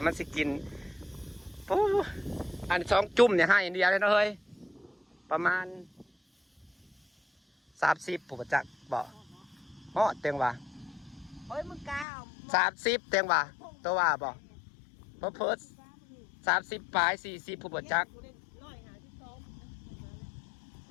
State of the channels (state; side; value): drops out; right; at 12.1 s